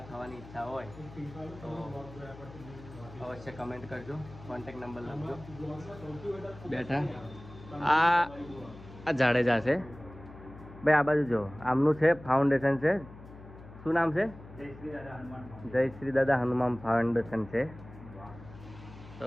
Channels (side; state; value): left; noise; hum, 17 dB below the sound